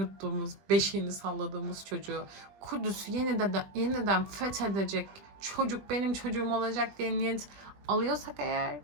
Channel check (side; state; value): left; late; 20 ms